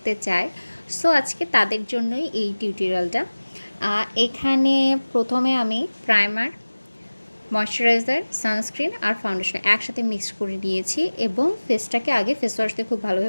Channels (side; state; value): both; inverted; correlation -1.00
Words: চায়। সো আজকে তাদের জন্যই এই টিউটোরিয়ালটা। এখানে প্রথমে আমি প্রাইমার, ময়শ্চারাইজার, সানস্ক্রিন আর ফাউন্ডেশন একসাথে মিক্স করে নিয়েছি এবং ফেসটাকে আগে ফেস ওয়াশ দিয়ে খুব